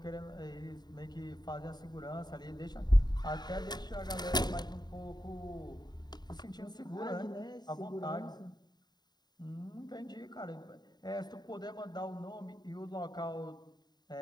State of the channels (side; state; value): right; late; 0.20 ms